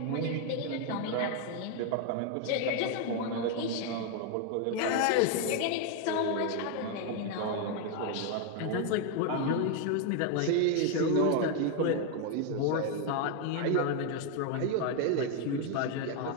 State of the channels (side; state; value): both; different; correlation 0.01